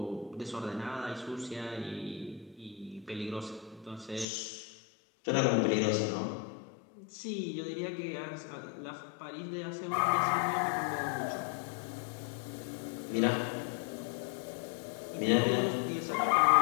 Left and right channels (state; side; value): drops out; right; at 4.2 s